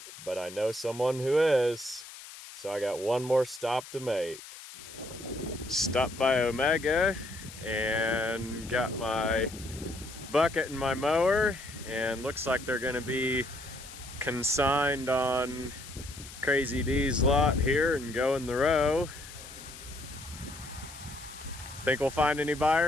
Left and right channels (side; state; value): left; noise; hiss, 15 dB below the sound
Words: but I know someone who is. So I got one more stop to make. Stopped by Omega and got my bucket and my mower, and looks like they're gonna be consigned on Crazy D's lot here and go in the row. Think we'll find any